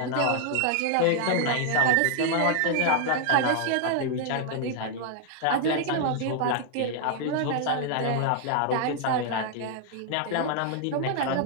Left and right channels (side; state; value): both; different; correlation 0.00